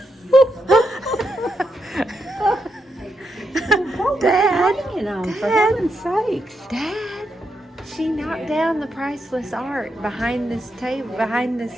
Dad, for heaven's sakes. Dad, she knocked down the priceless art behind this table, behind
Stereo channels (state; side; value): normal; both; correlation 0.82